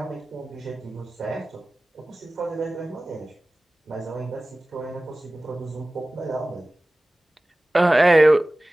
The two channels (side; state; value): both; normal; correlation 0.98